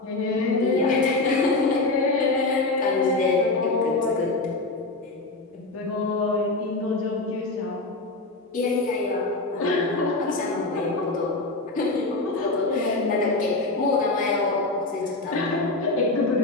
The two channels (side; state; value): right; quieter; 3.2 dB